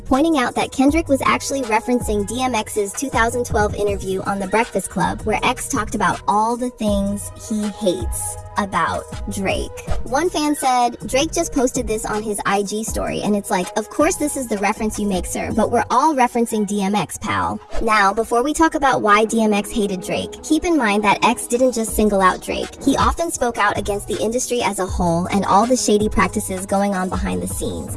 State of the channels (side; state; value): both; identical; correlation 1.00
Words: pointing out that Kendrick was actually referencing DMX's 2012 interview on The Breakfast Club, where X talked about all the things he hates about Drake. One fan said, Drake just posted this on his IG story, and it's like, of course this is the reference you make, sir, but we're all referencing DMX, pal. Now, before we talk about why DMX hated Drake, keep in mind that X didn't just single out Drake. He often spoke out against the industry as a whole and all the shady practices going on behind the scenes.